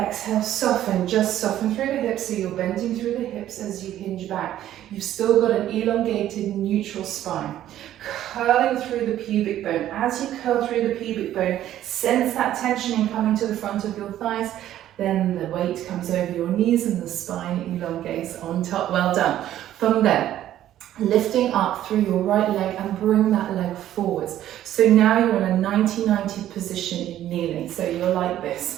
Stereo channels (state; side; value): quieter; left; 12.4 dB